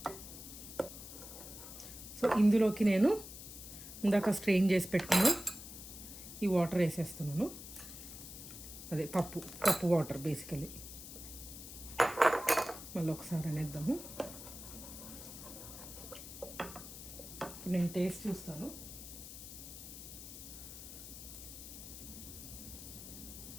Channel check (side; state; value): left; noise; hiss, 12 dB below the sound